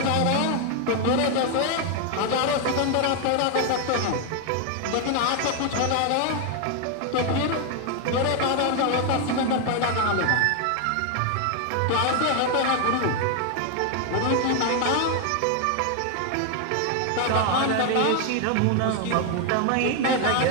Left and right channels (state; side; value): different; both; correlation 0.01